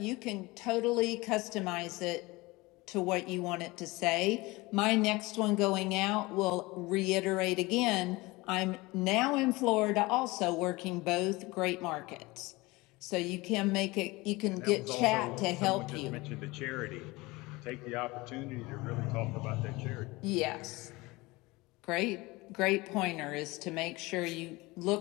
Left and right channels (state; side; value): quieter; right; 22.3 dB